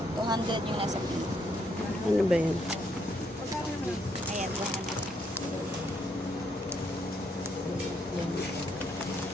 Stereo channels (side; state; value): both; normal; correlation 0.74